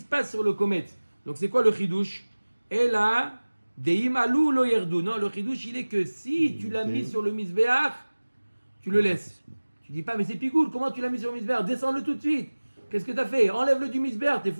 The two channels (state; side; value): inverted; both; correlation -1.00